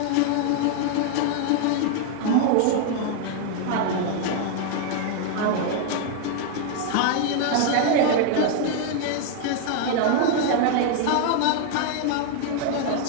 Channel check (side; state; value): both; different; correlation 0.00